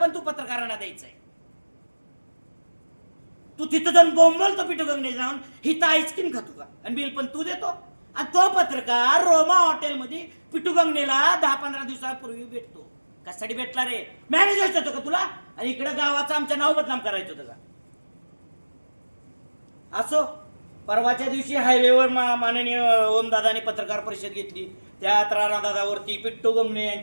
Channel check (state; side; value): inverted; both; correlation -1.00